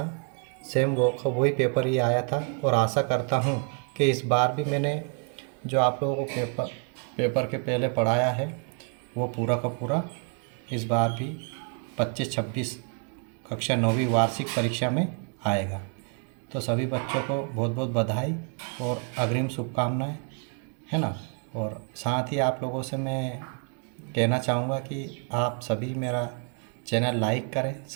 सेम वही पेपर ही आया था। और आशा करता हूँ कि इस बार भी मैंने जो आप लोगों को पेपर के पहले पढ़ाया है, वो पूरा का पूरा इस बार भी 25-26 कक्षा 9वीं वार्षिक परीक्षा में आएगा। तो सभी बच्चों को बहुत बहुत बधाई और अग्रिम शुभकामनाएं, है ना। और साथ ही आप लोगों से मैं कहना चाहूँगा कि आप सभी मेरा चैनल लाइक करें,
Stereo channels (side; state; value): left; quieter; 39.3 dB